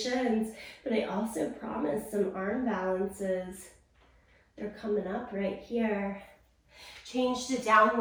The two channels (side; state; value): both; identical; correlation 1.00